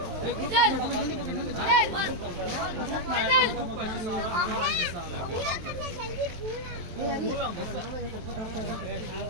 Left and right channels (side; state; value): left; late; 23 ms